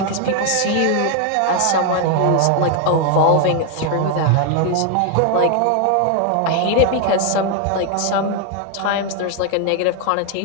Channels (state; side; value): different; both; correlation 0.01